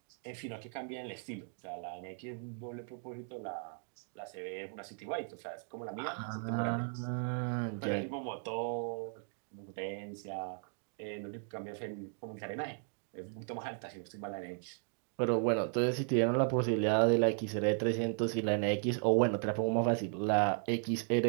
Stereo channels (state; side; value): silent; left; 54 dB below the other